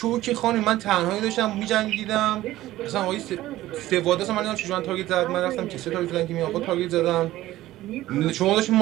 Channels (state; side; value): quieter; left; 15.6 dB